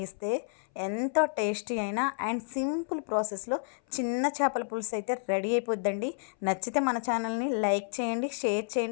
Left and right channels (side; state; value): right; silent; 57 dB below the other